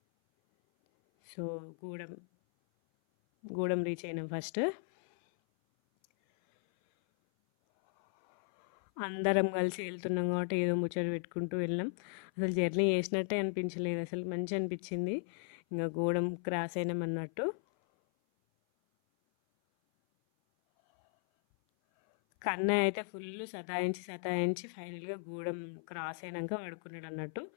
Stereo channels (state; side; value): silent; right; 54 dB below the other